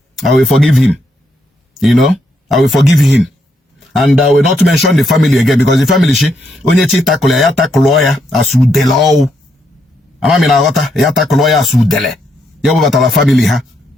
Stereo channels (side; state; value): both; normal; correlation 0.78